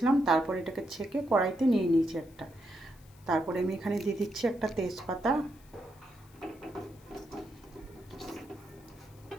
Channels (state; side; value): noise; left; hiss, 27 dB below the sound